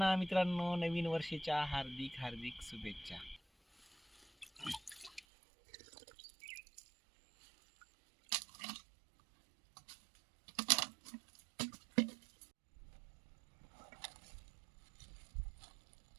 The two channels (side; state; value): left; drops out; at 5.2 s